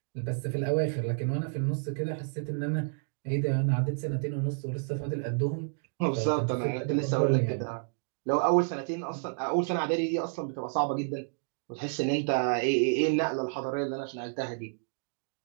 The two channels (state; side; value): silent; left; digital silence